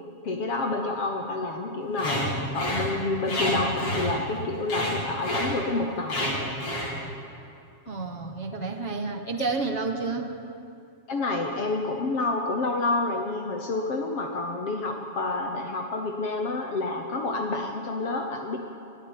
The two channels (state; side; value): late; right; 7.3 ms